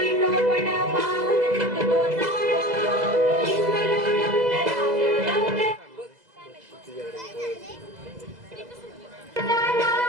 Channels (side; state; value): left; late; 2.0 ms